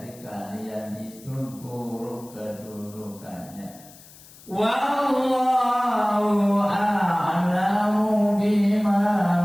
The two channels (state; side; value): noise; left; hiss, 22 dB below the sound